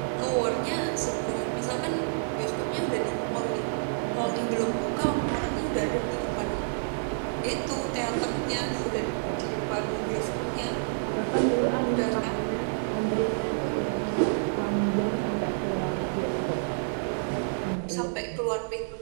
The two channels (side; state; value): left; silent; digital silence